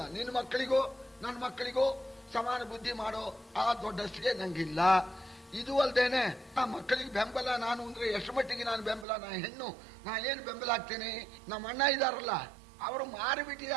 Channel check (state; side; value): drops out; left; at 9.1 s